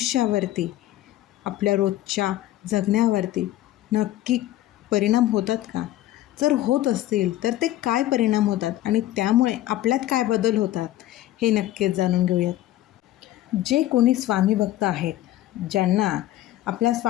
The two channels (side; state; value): right; quieter; 14.3 dB